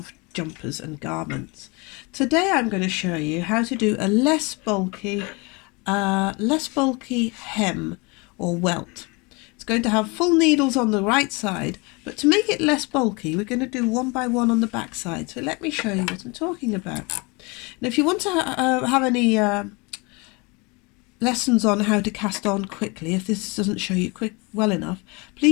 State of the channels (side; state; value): right; quieter; 28.1 dB